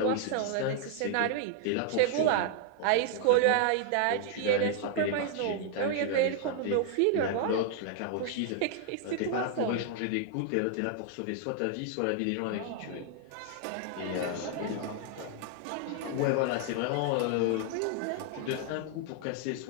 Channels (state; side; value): different; both; correlation 0.00